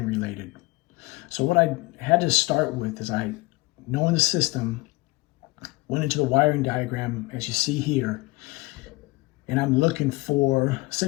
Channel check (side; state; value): right; quieter; 22.6 dB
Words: related. So what I had to start with is, knowing the system, went into the wiring diagram as you see here, and I'm looking for,